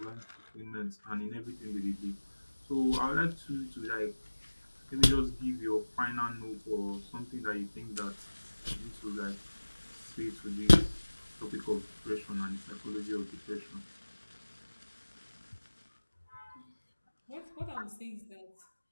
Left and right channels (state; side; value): inverted; both; correlation -1.00